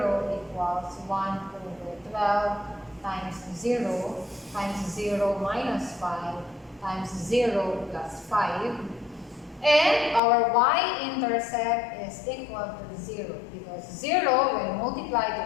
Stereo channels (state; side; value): drops out; right; at 10.2 s